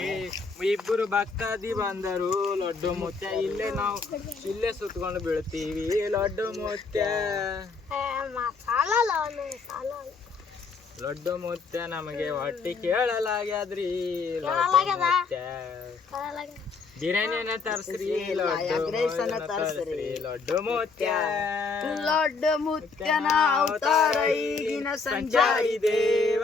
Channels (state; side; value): quieter; right; 4.6 dB